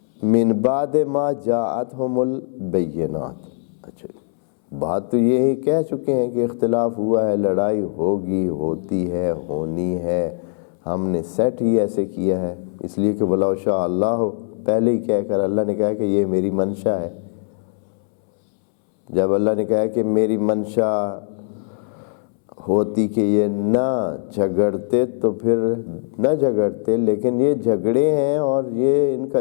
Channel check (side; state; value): right; silent; 65 dB below the other